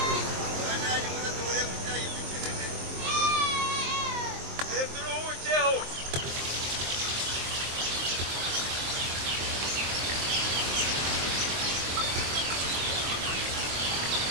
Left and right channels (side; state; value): left; late; 23 ms